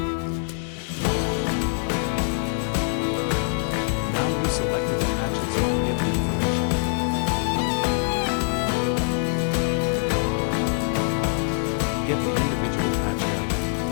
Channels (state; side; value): silent; right; 62 dB below the other